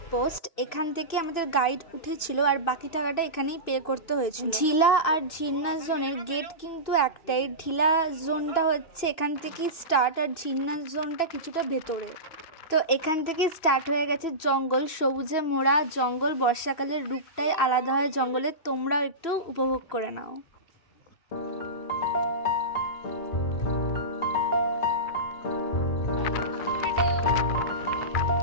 এখান থেকে আমাদের গাইড উঠেছিল, আর বাকি টাকাটা এখানেই পে করতে হয়েছিল। ঢিলা আর ঝিন্না জোনের গেট কিন্তু একটাই, ঢিলা জোনটা হচ্ছে এখান থেকেই স্টার্ট, আর ঝিন্না জোনটা কিছুটা ভেতরে। তো এখান থেকে স্টার্ট হয়ে গেছে জঙ্গল, সবুজে মোড়া জঙ্গল, বর্ষাকালের রূপটাই আলাদা হয় জঙ্গলের, তোমরাও একটু উপভোগ করে নাও।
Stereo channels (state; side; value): late; right; 2.7 ms